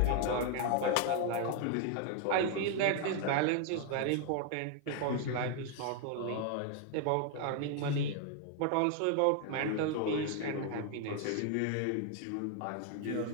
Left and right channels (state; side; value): different; both; correlation 0.00